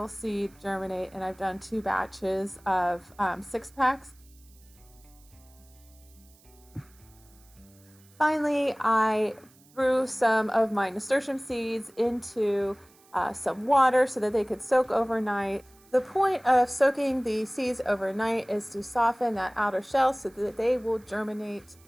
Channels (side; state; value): right; noise; hiss, 29 dB below the sound